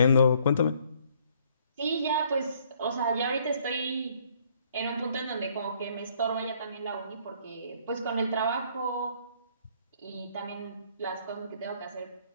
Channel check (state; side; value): inverted; both; correlation -0.63